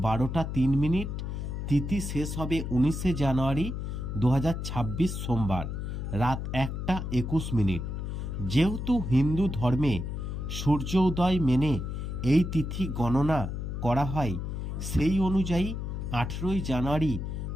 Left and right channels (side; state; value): left; noise; hum, 4 dB below the sound